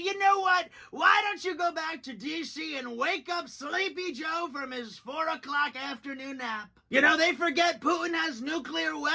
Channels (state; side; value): identical; both; correlation 1.00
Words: know what? Why don't you go back to D.C. and wake up Sleepy Joe from his 4 o'clock afternoon nap? They forget Putin has nuclear